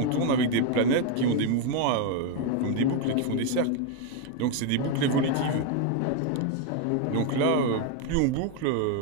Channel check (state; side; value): different; both; correlation 0.01